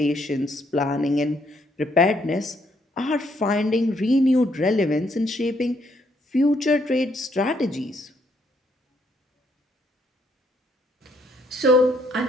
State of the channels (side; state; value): both; normal; correlation 0.71